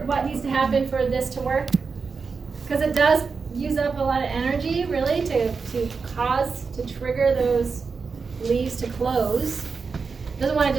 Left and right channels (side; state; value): left; quieter; 5.0 dB